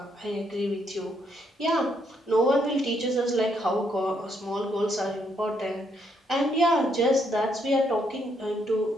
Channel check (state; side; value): normal; both; correlation 0.74